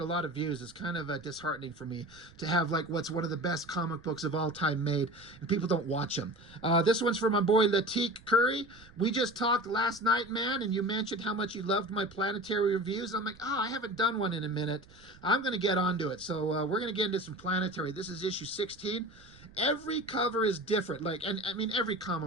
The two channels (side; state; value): right; noise; rumble, 23 dB below the sound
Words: lot of views. It's kind of disheartening for me to have like what's one of the best comic books of all time made, and people don't watch them. This one's for my boy Latik Curry. We just talked last night, man, and you mentioned how much you loved my planetary reviews. I'm like, I haven't done one in a minute. I'm going to get onto it. So we're going to get into some planetary. This is issue 16. Every cover is different. Like, and I mean, every